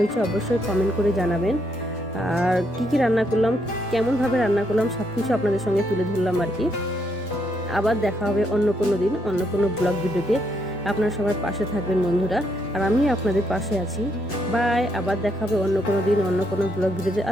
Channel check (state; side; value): normal; both; correlation 0.75